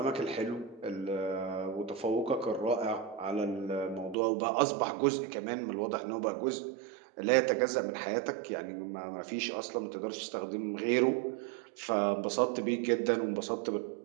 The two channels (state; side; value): drops out; left; at 4.2 s